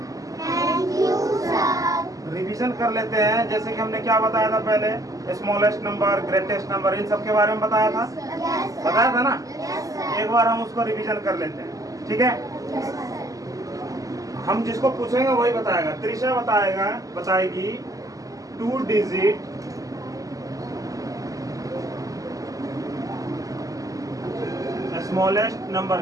Thank you sir. रिवीजन कर लेते हैं। जैसे कि हमने क्या बताया था पहले, स्मॉलेस्ट नंबर, ग्रेटेस्ट नंबर, इन सब के बारे में बताया था। बताया था ना। एक बार हम उसको रिवीजन कर लेते हैं। ठीक है, हम जिसको पूछेंगे वही बताएगा। त्रिशा बताएगी 2 डिजिट स्मॉलेस्ट नंबर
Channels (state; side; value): late; left; 0.17 ms